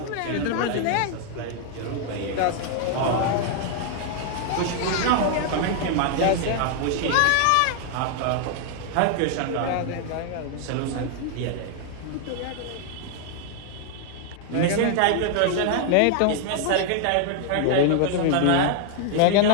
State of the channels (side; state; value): both; different; correlation 0.00